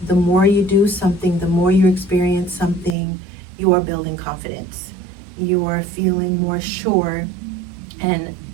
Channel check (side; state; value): left; drops out; at 3.0 s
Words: the more you do something, the more you experience something, you are building confidence. You are feeling more sure. And